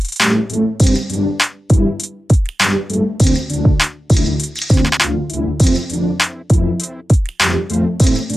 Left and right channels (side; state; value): both; normal; correlation 0.95